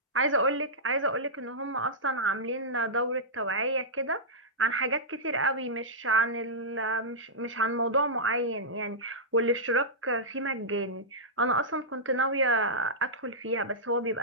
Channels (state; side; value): normal; both; correlation -0.13